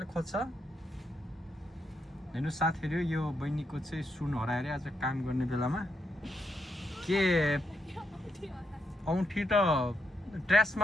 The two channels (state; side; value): normal; both; correlation 0.80